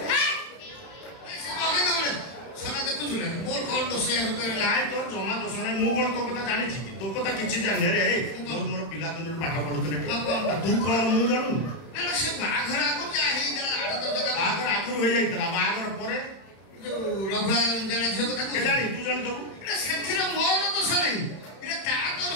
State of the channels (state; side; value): late; right; 31 ms